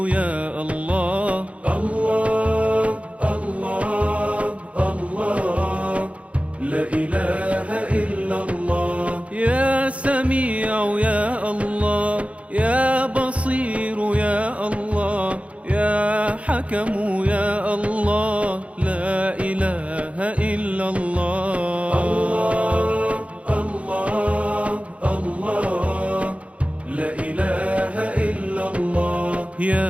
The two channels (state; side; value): late; left; 0.064 ms